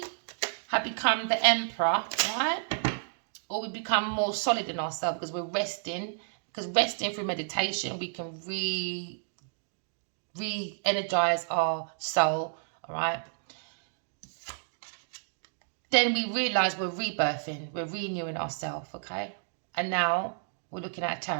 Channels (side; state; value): left; silent; digital silence